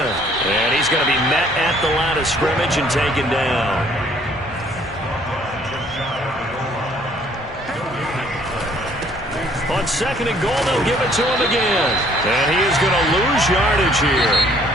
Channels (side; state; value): both; normal; correlation 0.61